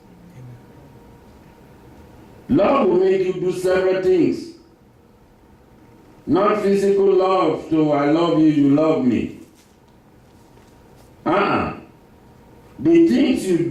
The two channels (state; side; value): identical; both; correlation 1.00